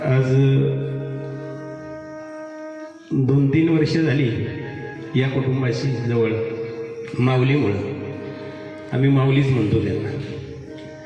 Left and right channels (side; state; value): both; identical; correlation 1.00